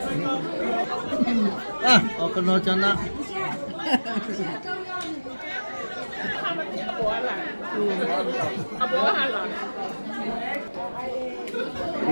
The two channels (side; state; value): both; inverted; correlation -1.00